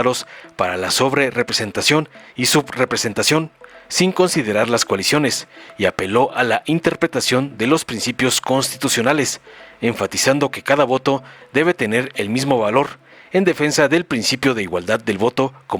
para la sobrerepresentación y subrepresentación, sin considerar las coaliciones, y apeló a la interpretación de los principios constitucionales, enfatizando que cada voto debe tener el mismo valor, en defensa del principio de igualdad del voto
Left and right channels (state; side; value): identical; both; correlation 1.00